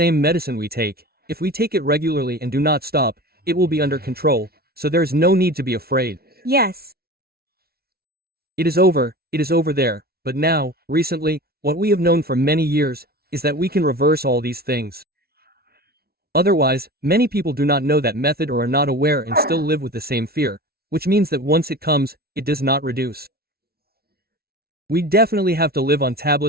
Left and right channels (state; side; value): late; left; 0.45 ms